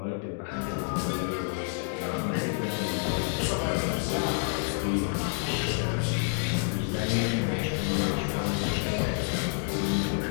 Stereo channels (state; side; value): silent; right; 57 dB below the other